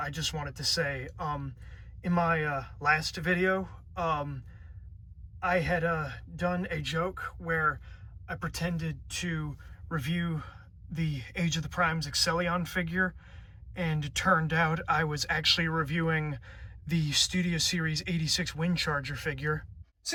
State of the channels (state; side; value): identical; both; correlation 1.00